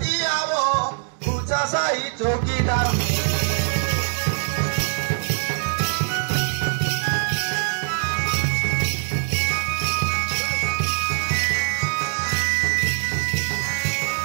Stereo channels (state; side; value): silent; left; 63 dB below the other